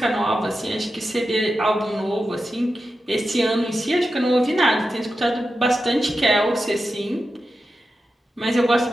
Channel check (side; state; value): both; normal; correlation 0.90